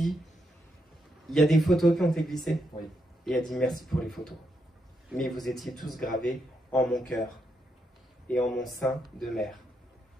Il y a des photos qui ont été glissées. Oui. Et elle dit merci pour les photos. Mais vous étiez tous gravés en mon cœur et en mon sein de mère.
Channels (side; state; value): both; normal; correlation 0.81